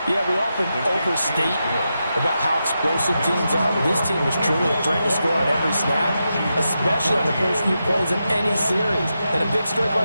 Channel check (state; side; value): inverted; both; correlation -0.88